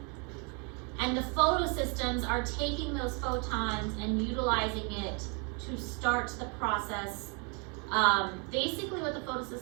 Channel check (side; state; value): left; quieter; 34.5 dB